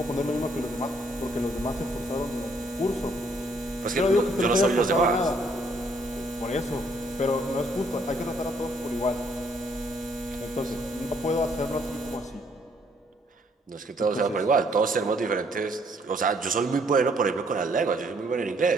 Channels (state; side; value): normal; both; correlation 0.67